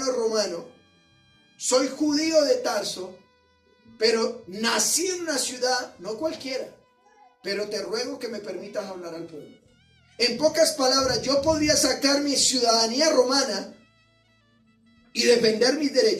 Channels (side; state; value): both; identical; correlation 1.00